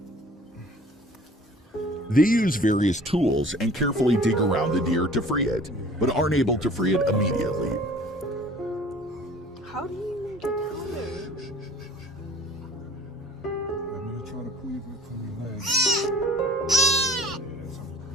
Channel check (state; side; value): normal; both; correlation 0.49